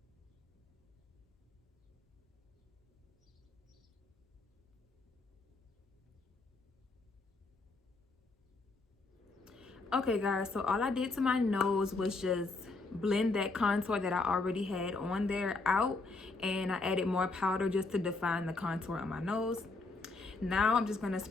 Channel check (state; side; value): quieter; right; 3.5 dB